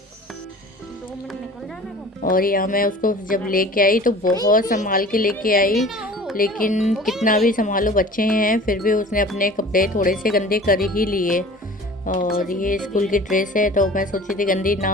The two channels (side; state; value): both; normal; correlation 0.43